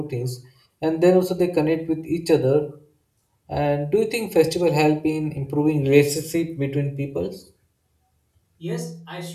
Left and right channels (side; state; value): both; identical; correlation 1.00